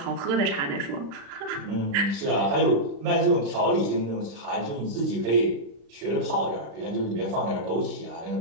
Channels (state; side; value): late; left; 35 ms